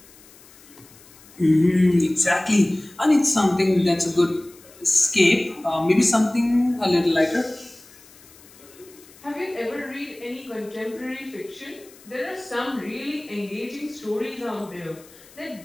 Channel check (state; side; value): noise; left; hiss, 24 dB below the sound